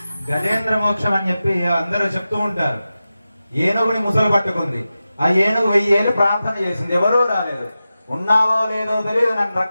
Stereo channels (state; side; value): inverted; both; correlation -0.93